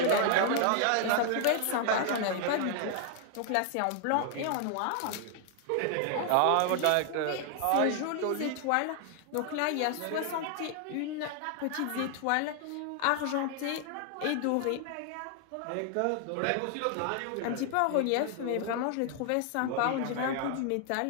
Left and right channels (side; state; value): both; different; correlation 0.00